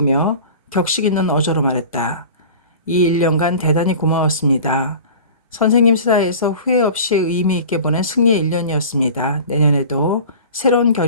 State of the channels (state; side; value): inverted; both; correlation -0.40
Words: 격식 있는 어조로 말했다. 이 1년간 대단히 고마웠습니다. 선생님 사이에서 후회 없이 의미 있게 보낸 승리의 1년이었습니다. 내년에도 새로운